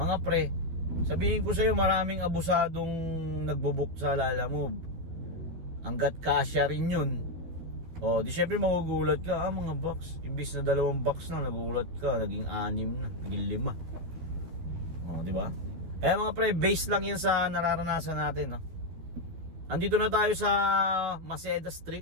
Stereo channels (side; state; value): left; late; 13 ms